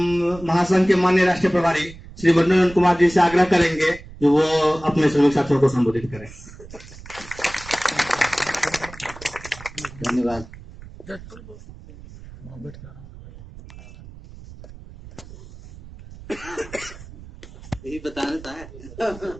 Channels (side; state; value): right; noise; rumble, 17 dB below the sound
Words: महासंघ के माननीय राष्ट्रीय प्रभारी श्री वरुण कुमार जी से आग्रह करेंगे कि वो अपने श्रमिक साथियों को संबोधित करें। धन्यवाद। यही बताना था।